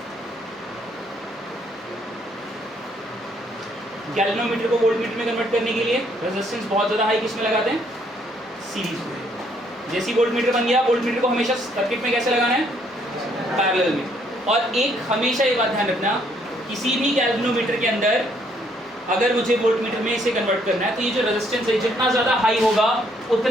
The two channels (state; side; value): normal; both; correlation 0.68